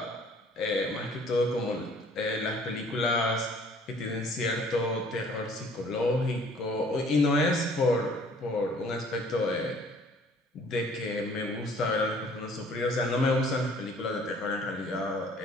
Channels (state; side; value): normal; both; correlation 0.56